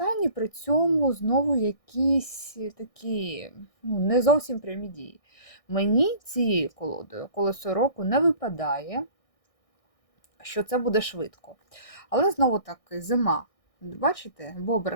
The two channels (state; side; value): late; right; 1.6 ms